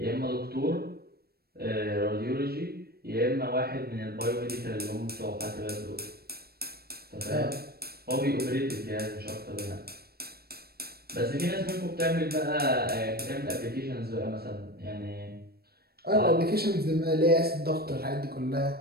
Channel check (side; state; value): left; late; 0.46 ms